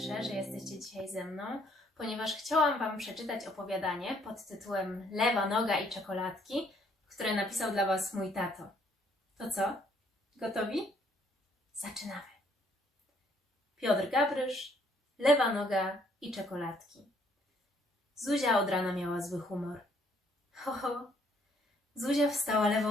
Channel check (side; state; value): both; normal; correlation 0.66